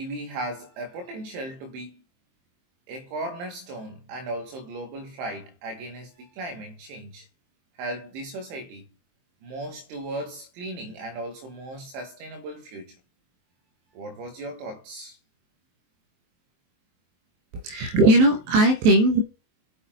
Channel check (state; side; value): late; left; 23 ms